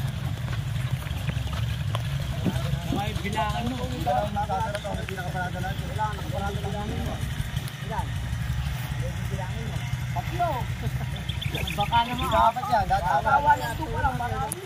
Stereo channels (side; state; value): both; identical; correlation 1.00